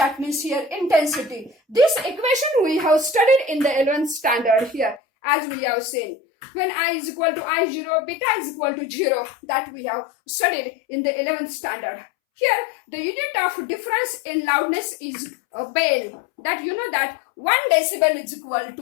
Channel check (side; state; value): right; drops out; at 5.0 s